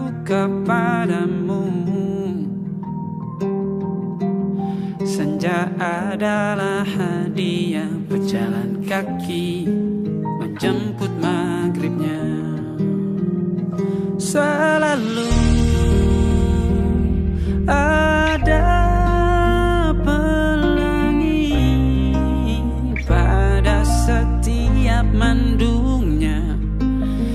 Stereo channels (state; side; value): identical; both; correlation 1.00